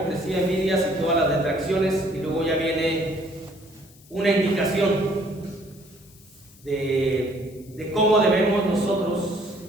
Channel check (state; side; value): noise; left; hiss, 26 dB below the sound